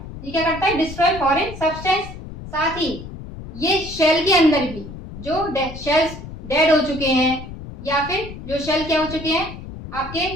ये क्या करता है, डिस्ट्रॉय फॉरेन सब्सटेंस। साथ ही ये शेल के अंदर भी जो शेल्स डेड हो चुके हैं, या फिर जो शेल क्या हो चुके हैं, आपके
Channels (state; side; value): noise; left; rumble, 12 dB below the sound